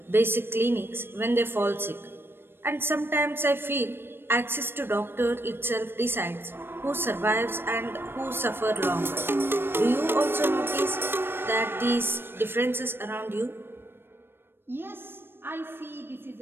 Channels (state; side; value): late; left; 0.10 ms